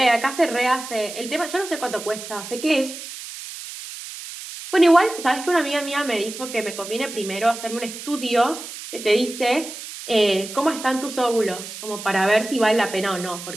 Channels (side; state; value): right; noise; hiss, 11 dB below the sound